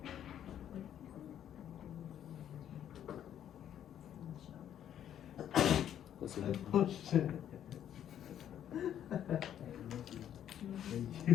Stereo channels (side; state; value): right; quieter; 10.2 dB